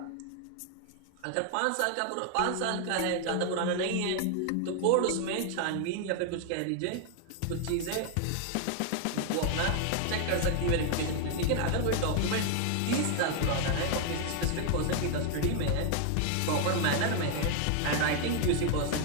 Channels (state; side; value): different; both; correlation 0.00